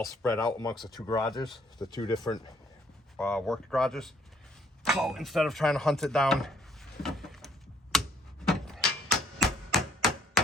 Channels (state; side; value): normal; both; correlation 0.64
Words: spread out amongst the two garages, the two different work garages. So instead of trying to hunt it down, that